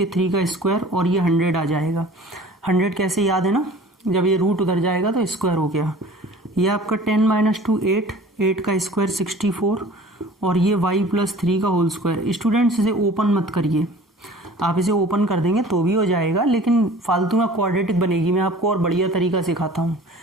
3 का स्क्वायर और ये 100 आ जाएगा। 100 कैसे याद है ना, जब ये रूट उधर जाएगा तो स्क्वायर हो गया। ये आपका 10 माइनस 2 8 का स्क्वायर 64 और ये y प्लस 3 का होल स्क्वायर। स्टूडेंट्स इसे ओपन मत करिए, आप इसे ओपन कर देंगे तो भी हो जाएगा, लेकिन फालतू में क्वाड्रेटिक बनेगी। मैं आपको और बढ़िया तरीका सिखाता हूँ।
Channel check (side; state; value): both; normal; correlation 0.45